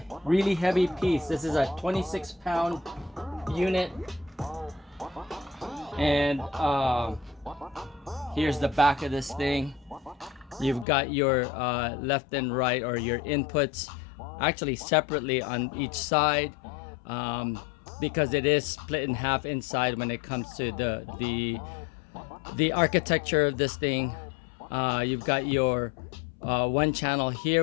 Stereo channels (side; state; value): right; drops out; at 10.9 s